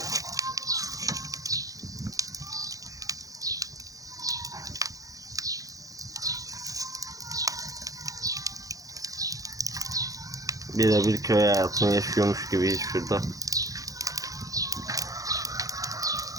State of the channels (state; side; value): late; left; 0.17 ms